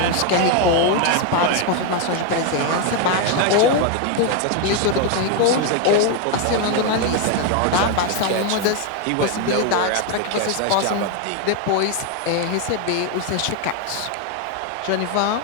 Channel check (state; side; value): different; both; correlation 0.01